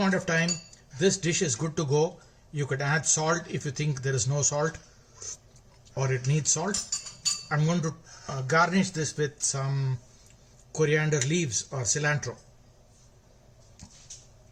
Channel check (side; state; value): both; identical; correlation 1.00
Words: of time, this dish is good to go. You could add salt if you think there is no salt or it needs salt. I'm going to garnish this with some coriander leaves or cilantro.